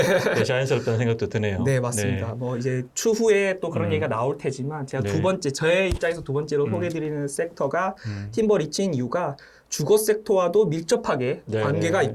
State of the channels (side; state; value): both; identical; correlation 1.00